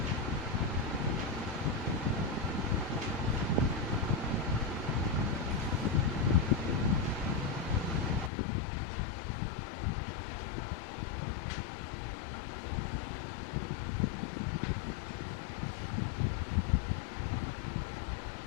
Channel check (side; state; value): right; drops out; at 8.3 s